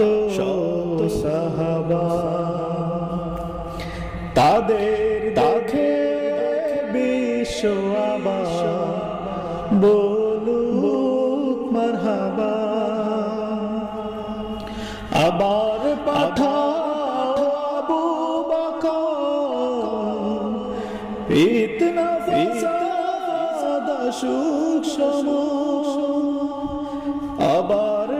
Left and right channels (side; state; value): both; identical; correlation 1.00